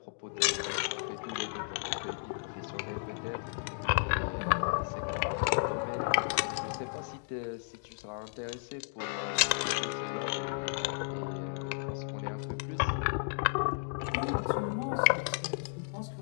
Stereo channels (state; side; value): silent; right; digital silence